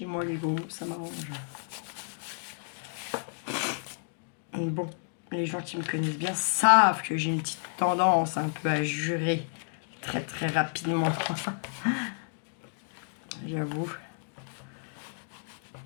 moi, les gros mots, ça m'arrange. Bon, les gens qui me connaissent bien savent que j'ai une petite tendance un peu à jurer très rapidement. J'avoue.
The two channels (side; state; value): right; silent; digital silence